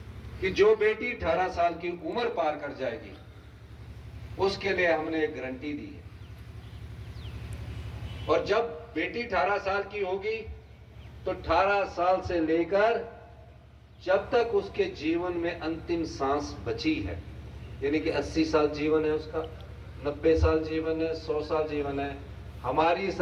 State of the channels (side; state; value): both; identical; correlation 1.00